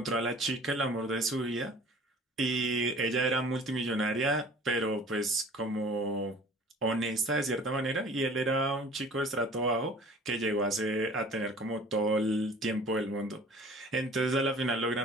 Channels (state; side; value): normal; both; correlation 0.47